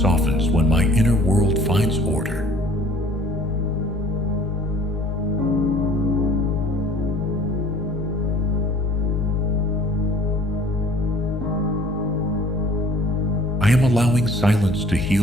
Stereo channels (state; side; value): normal; both; correlation 0.52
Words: when my inner world finds order. I am allowing silence to